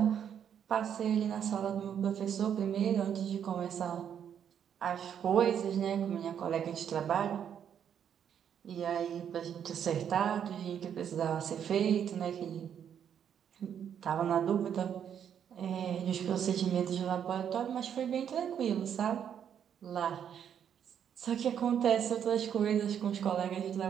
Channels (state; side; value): quieter; left; 8.7 dB